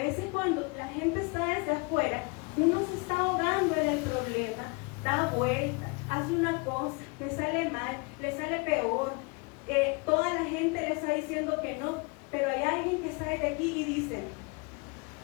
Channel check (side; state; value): right; quieter; 30.7 dB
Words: cuando la gente está desde afuera, uno se está ahogando en el problema, da vuelta, hace una cosa, le sale mal, le sale peor, toda la gente le está diciendo que no, pero hay alguien que sale de aquí y dice,